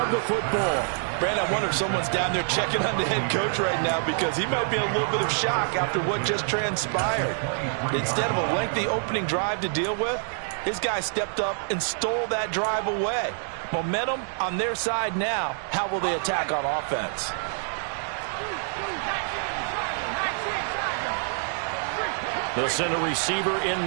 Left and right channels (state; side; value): silent; left; 61 dB below the other